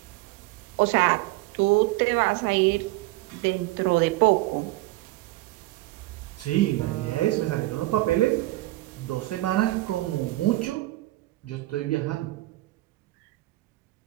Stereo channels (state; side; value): quieter; left; 19.0 dB